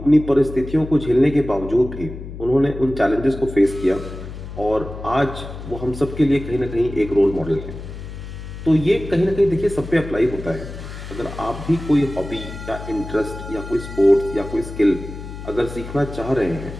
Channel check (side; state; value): left; noise; hum, 11 dB below the sound